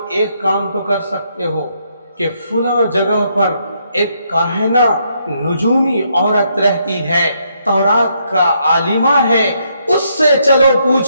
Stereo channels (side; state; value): both; inverted; correlation -0.75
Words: ایک کام تو کر سکتے ہو کہ فلاں جگہ پر ایک کاہنہ نجومی عورت رہتی ہے، تورات کا عالمہ ہے، اس سے چلو